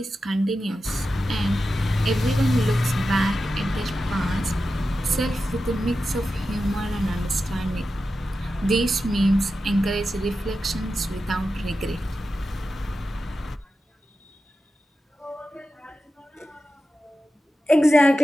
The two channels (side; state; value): both; normal; correlation 0.91